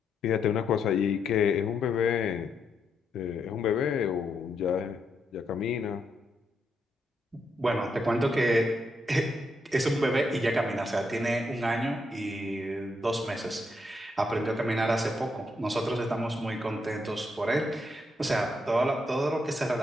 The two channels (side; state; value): both; normal; correlation 0.79